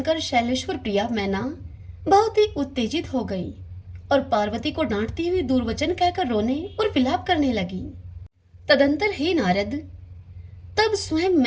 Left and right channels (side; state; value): both; identical; correlation 1.00